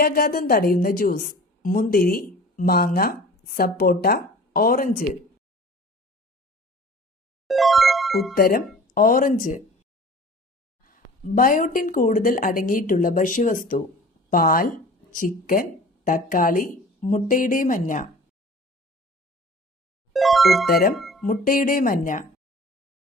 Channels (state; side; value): normal; both; correlation 0.43